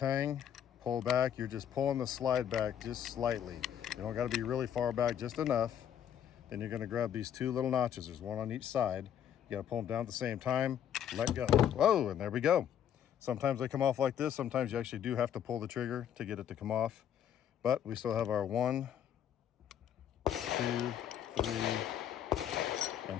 pull back. You're just pulling the slide back just slightly. You don't got to be really far back, just enough. Then you're going to grab these two little notches. There's one on each side. You got to pull them down at the same time. Let go. Whoa, and there we go. Sometimes they come off like this. Sometimes you actually do have to pull the trigger to get it to come off. But we still have our 1, 2, 3,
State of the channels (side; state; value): right; quieter; 9.6 dB